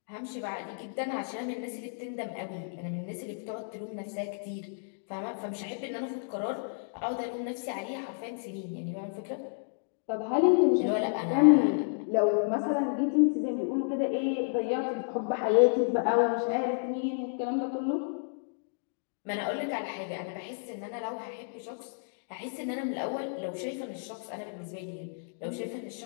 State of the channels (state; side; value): silent; right; digital silence